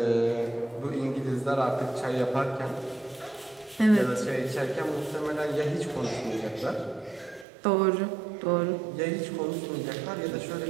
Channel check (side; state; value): left; drops out; at 7.5 s